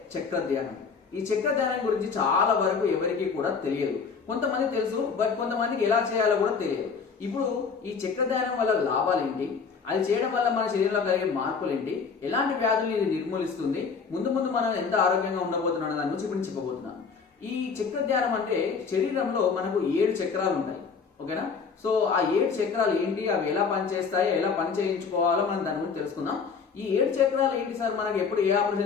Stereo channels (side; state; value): right; quieter; 5.6 dB